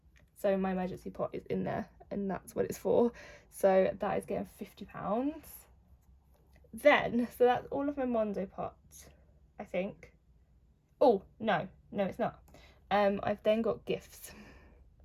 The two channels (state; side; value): identical; both; correlation 1.00